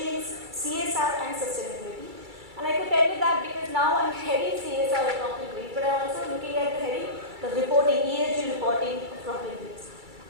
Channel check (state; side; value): late; left; 2.3 ms